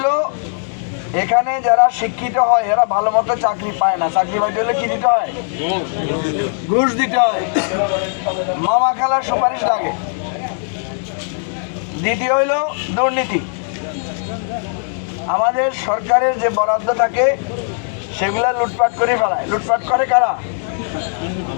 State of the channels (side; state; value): right; silent; 63 dB below the other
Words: এখানে যারা শিক্ষিত হয় এরা ভালো মতো চাকরি পায় না। চাকরি পাইতে হলে কি দিতে হয়? ঘুষ দিতে হয়, মামা খালার সুপারিশ লাগে। দ্বিতীয় হইল দুর্নীতি। আমাদের সরকারের যে বরাদ্দ থাকে সেগুলা লুটপাট করে ফেলায়। লুটপাট করে কারা?